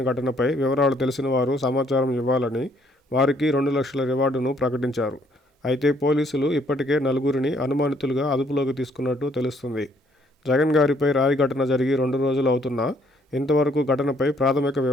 ఘటనపై వివరాలు తెలిసిన వారు సమాచారం ఇవ్వాలని వారికి 2 లక్షల రివార్డును ప్రకటించారు. అయితే పోలీసులు ఇప్పటికే 4గురిని అనుమానితులుగా అదుపులోకి తీసుకున్నట్టు తెలుస్తుంది. జగన్ గారిపై రాయి ఘటన జరిగి 2 రోజులు అవుతున్నా ఇంతవరకు ఘటనపై ప్రాథమిక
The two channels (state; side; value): normal; both; correlation 0.66